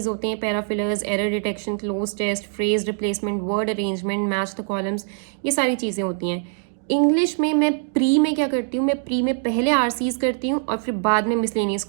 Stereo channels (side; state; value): left; silent; digital silence